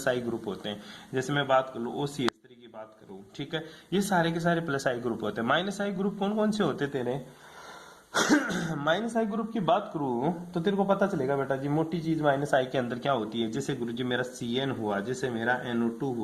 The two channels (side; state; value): both; identical; correlation 1.00